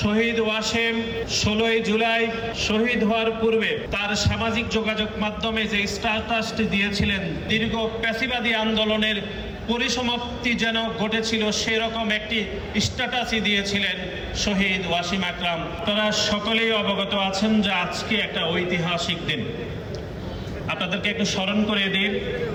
শহীদ ওয়াসিম 16ই জুলাই শহীদ হওয়ার পূর্বে তার সামাজিক যোগাযোগ মাধ্যমে যে স্ট্যাটাসটি দিয়েছিলেন, দীর্ঘ প্যাসিবাদী আন্দোলনের পরিসমাপ্তি যেন ঘটেছিল সেরকম একটি স্ট্যাটাসই দিয়েছিলেন শহীদ ওয়াসিম আকরাম। তারা সকলেই অবগত আছেন যে আজকে একটা ঐতিহাসিক দিন। আপনাদেরকে একটু স্মরণ করে দিই,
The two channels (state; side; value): identical; both; correlation 1.00